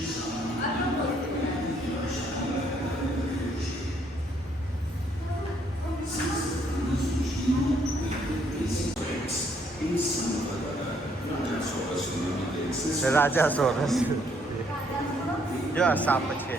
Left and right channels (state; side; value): normal; both; correlation 0.68